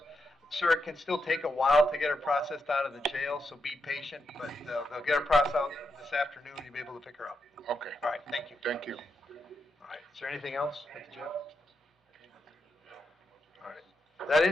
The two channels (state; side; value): normal; both; correlation 0.84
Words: Sir, it can still take a while to get her processed out of the jail, so be patient, but they'll get her processed out this afternoon, you'll be able to pick her up. Okay. All right, thank you. Thank you. All right, is there anything else at the jail? All right. Is that